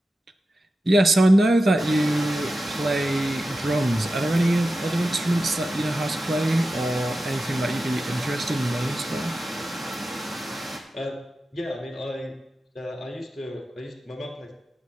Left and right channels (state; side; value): normal; both; correlation 0.93